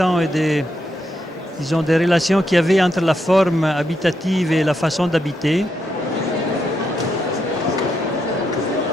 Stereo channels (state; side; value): normal; both; correlation 0.81